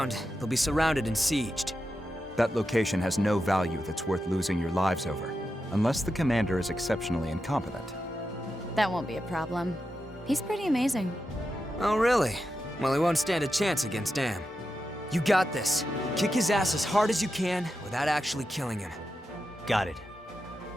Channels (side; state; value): both; normal; correlation 0.89